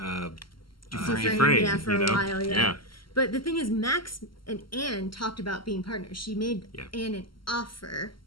Dufresne. Yeah, for a while, yeah. But the thing is, Max and Anne talked about being partners. She made Anne an offer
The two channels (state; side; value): late; right; 0.73 ms